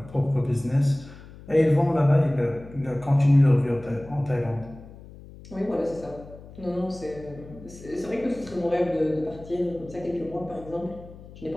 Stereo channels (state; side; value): noise; left; hum, 18 dB below the sound